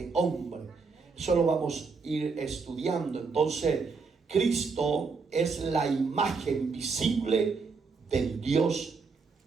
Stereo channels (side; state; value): left; quieter; 4.7 dB